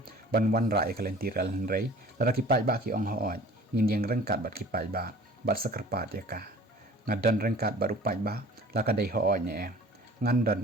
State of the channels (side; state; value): both; normal; correlation 0.47